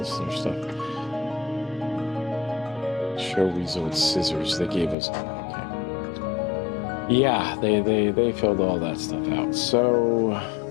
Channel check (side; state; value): right; drops out; at 5.0 s